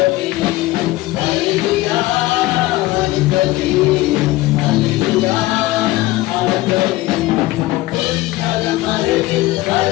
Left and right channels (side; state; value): right; quieter; 18.0 dB